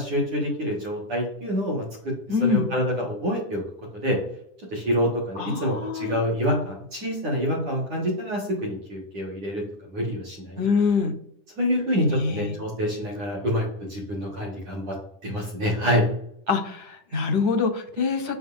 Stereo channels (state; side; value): late; left; 10 ms